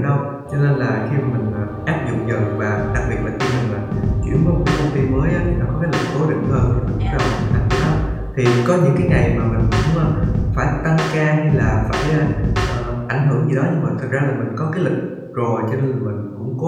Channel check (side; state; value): both; identical; correlation 1.00